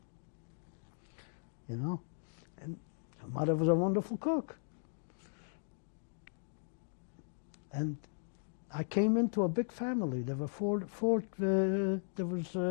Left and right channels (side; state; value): right; silent; digital silence